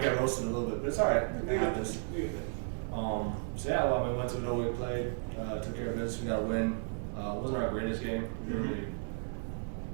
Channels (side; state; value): left; silent; 55 dB below the other